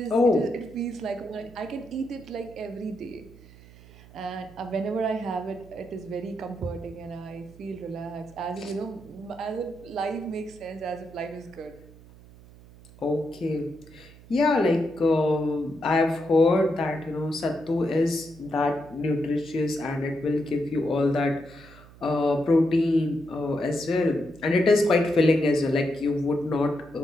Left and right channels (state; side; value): noise; right; hum, 22 dB below the sound